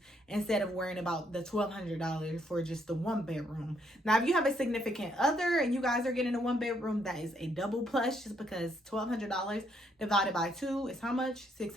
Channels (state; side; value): normal; both; correlation 0.72